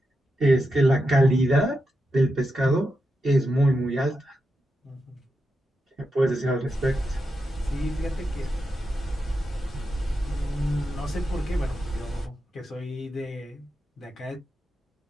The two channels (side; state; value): both; normal; correlation 0.87